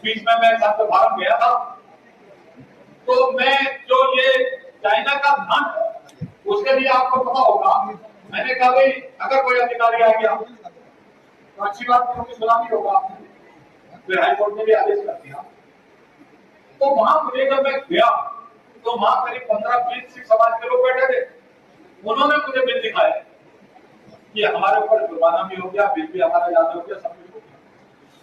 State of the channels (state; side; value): identical; both; correlation 1.00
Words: बीच में मैं संत भारत गया था, तो मैं जो ये चाइना का धन, उसके लिए आपको पता होगा, मैंने कहा भाई अगर कोई अधिकारी आ गया तो अच्छी बात क्योंकि सलामी होगा, फिर हाईकोर्ट ने भी आदेश कर दिया। तो वहां मुझे जब मैं गया तो वहां करीब 15-20 सिख समाज के लोग बैठे थे, उन्होंने मुझे बिल दिखाया कि हमारे ऊपर जुर्माना भी हो गया, बिल भी हमारा याद हो गया, सब कुछ हो गया।